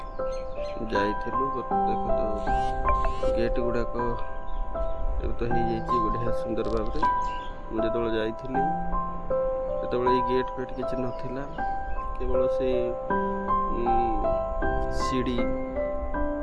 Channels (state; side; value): identical; both; correlation 1.00